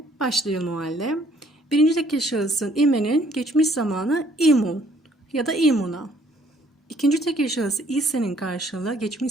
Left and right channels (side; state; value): both; normal; correlation 0.63